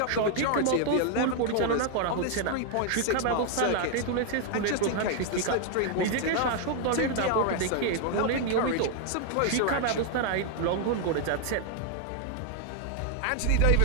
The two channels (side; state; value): both; different; correlation 0.00